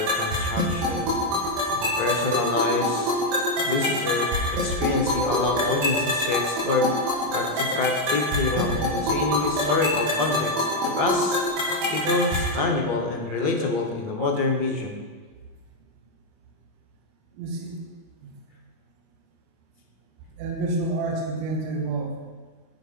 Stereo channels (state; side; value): late; left; 25 ms